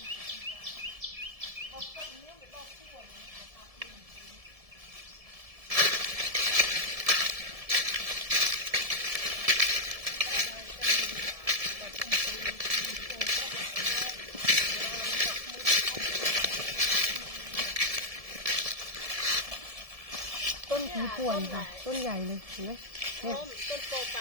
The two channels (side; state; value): left; late; 1.7 ms